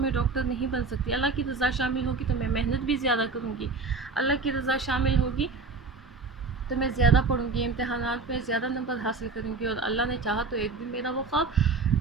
ڈاکٹر نہیں بن سکتی، اللہ کی رضا شامل ہوگی تو میں محنت بھی زیادہ کروں گی، اللہ کی رضا شامل ہوگی تو میں زیادہ پڑھوں گی، امتحانات میں زیادہ نمبر حاصل کروں گی، اور اللہ نے چاہا تو ایک دن میرا وہ خواب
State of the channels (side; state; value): left; quieter; 4.2 dB